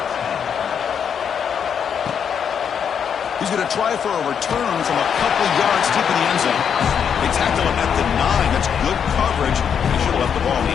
He's going to try for a return from a couple yards deep in the end zone. They tackle him at the 9. That's good coverage. He should have left the ball in the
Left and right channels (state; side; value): quieter; right; 7.6 dB